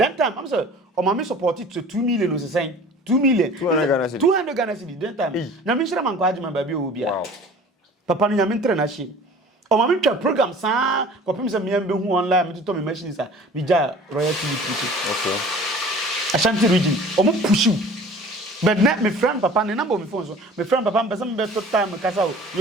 time I'm say o ma me support it to 2 million o say 2 million 200 Ghana cedi that time na me shira man kwa adwuma ba bi o bia papa no nya me ntre na hye o ma me twa program saa ko pem say me am be hu online me to me machines a me ja Royal TV okay Ashanti region o mo push you but net me friend papa ne number me phone so me friend papa me person be to time kasa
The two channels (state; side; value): normal; both; correlation 0.46